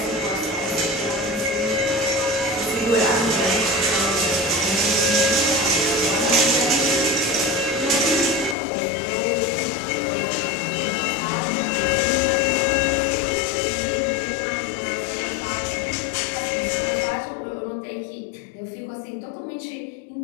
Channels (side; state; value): right; drops out; at 8.6 s